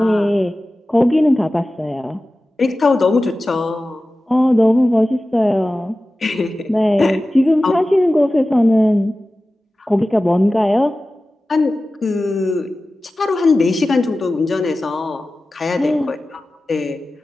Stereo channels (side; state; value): both; normal; correlation 0.95